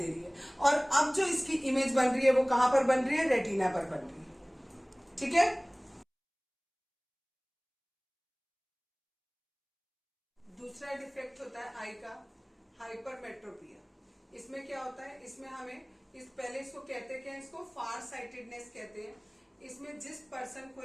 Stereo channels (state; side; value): identical; both; correlation 1.00